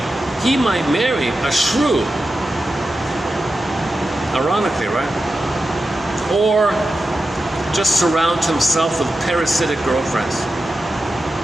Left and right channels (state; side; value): normal; both; correlation 0.91